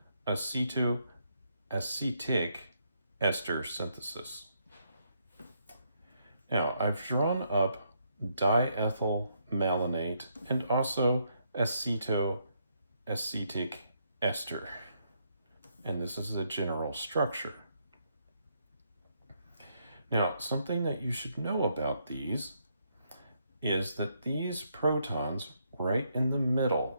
acetoacetic ester synthesis. Now, I've drawn up diethyl malonate and also acetoacetic ester. And this is the general structure. Now, something that you should know about these is that these protons right in the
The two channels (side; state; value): both; inverted; correlation -0.76